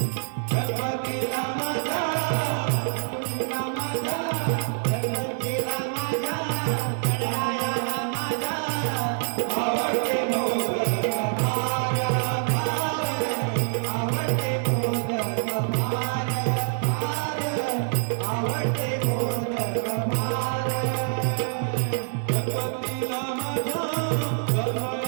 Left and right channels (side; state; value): left; silent; digital silence